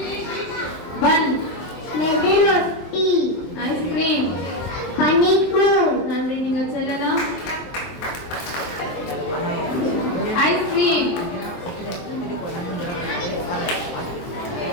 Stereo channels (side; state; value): right; late; 23 ms